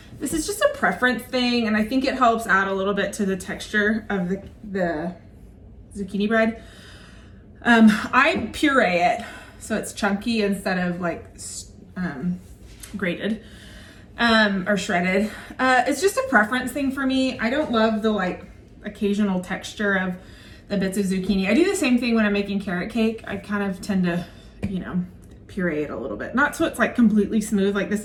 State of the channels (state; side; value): identical; both; correlation 1.00